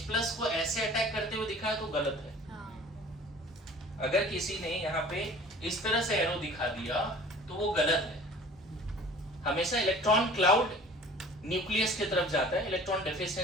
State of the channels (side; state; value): both; normal; correlation 0.45